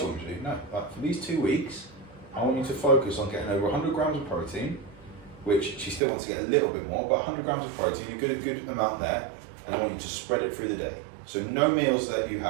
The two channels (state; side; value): drops out; left; at 6.0 s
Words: want me to do? No. Like for these 2 weeks, I want you to focus on getting over 100 grams of protein, which she still wants to get a little bit more, but 100 grams of protein, a good amount there, and I want you to spread it through the day. So no meals that you